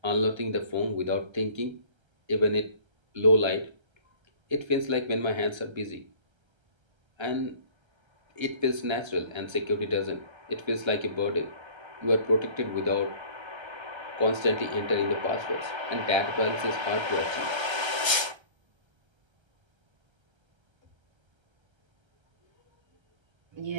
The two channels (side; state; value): left; late; 1.3 ms